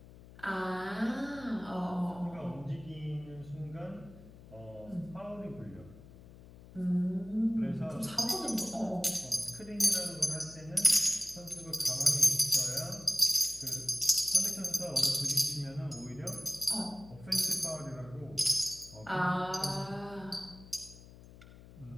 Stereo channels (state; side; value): noise; left; hum, 19 dB below the sound